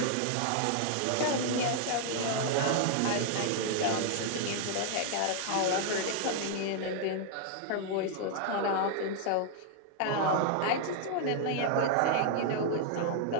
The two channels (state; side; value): different; both; correlation 0.00